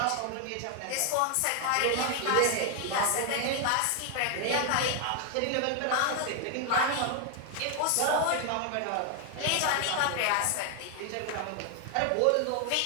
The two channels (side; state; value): both; different; correlation 0.00